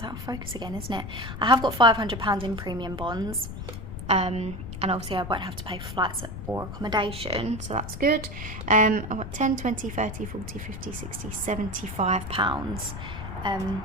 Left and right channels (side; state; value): left; noise; rumble, 8 dB below the sound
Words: out of focus again, isn't it? I have got £500 in premium bonds, and obviously I won't have to pay for flights or accommodation, so that's good. I've got 10, 20, 30, 40, 50, 60, £75.